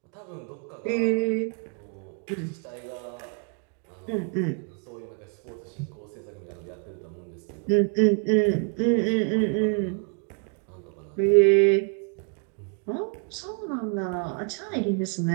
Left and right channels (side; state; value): left; quieter; 39.3 dB